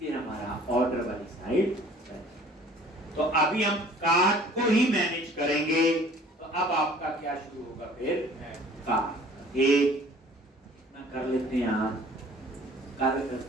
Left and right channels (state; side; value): normal; both; correlation 0.51